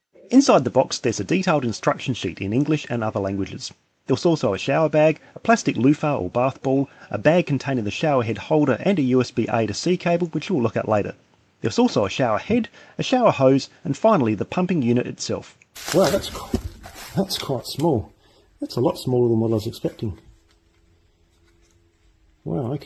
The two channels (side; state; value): both; identical; correlation 1.00